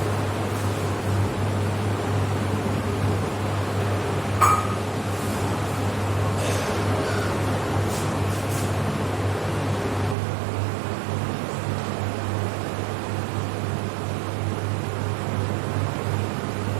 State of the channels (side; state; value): left; drops out; at 10.2 s